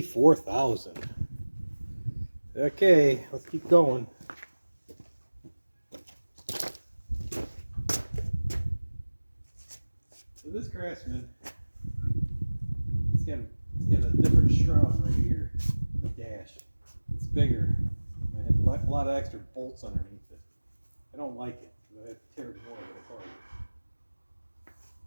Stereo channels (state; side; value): inverted; both; correlation -1.00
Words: Okay, let's keep going. So this Craftsman, it's got a different shroud right here, the dash. It's bigger. I had a lot of extra bolts underneath it. I don't like it. I have to tear more of it